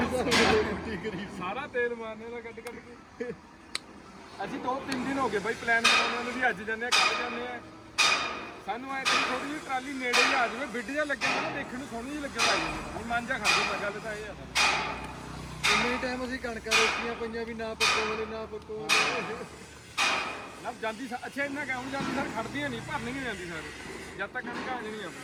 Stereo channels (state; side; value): identical; both; correlation 1.00